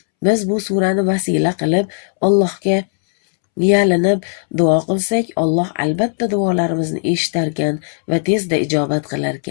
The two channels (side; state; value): right; silent; 68 dB below the other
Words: Biz bu surani vasila qilib Allohga yalinib duo qilsak, Alloh albatta duolarimizni eshitarkan va tezda ijobat